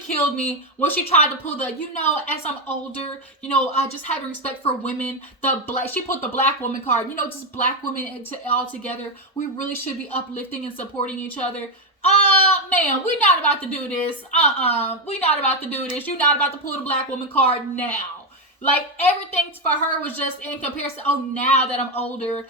me when she tried to pull the, as I'm older, just having respect for women. She put the black woman card, just black women all together. We really should be uplifting and supporting each other. Man, we're not about to do this. We're not about to do this. You're not about to pull the black woman card now. Like, everything for her was just in comparison. Oh, now that I'm older,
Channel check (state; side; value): normal; both; correlation 0.07